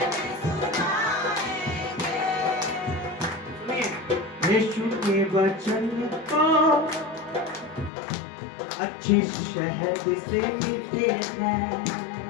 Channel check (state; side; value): drops out; right; at 7.9 s